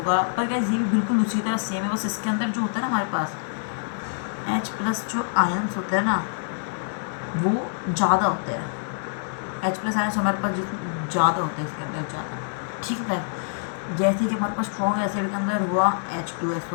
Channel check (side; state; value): right; silent; 61 dB below the other